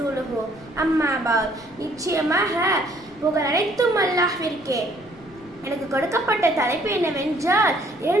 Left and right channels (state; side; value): noise; left; rumble, 26 dB below the sound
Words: அம்மா பஅத். நிச்சயமாக புகழ் அனைத்தும் அல்லாஹ்விற்கே. எனக்கு கொடுக்கப்பட்ட தலைப்பு என்னவென்றால்